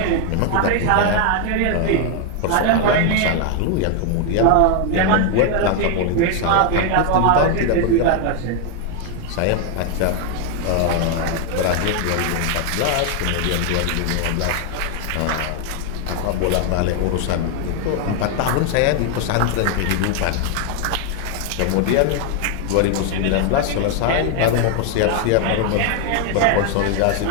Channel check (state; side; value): different; both; correlation 0.01